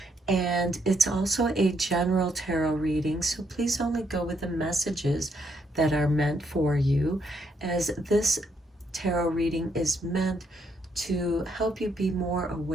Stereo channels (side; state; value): both; normal; correlation 0.74